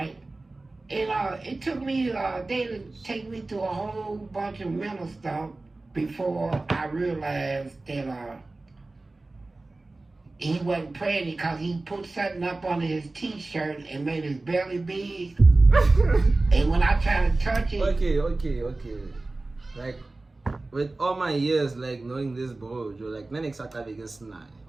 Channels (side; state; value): left; quieter; 3.1 dB